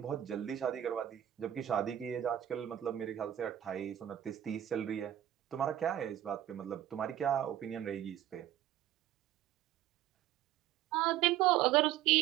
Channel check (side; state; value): left; quieter; 11.9 dB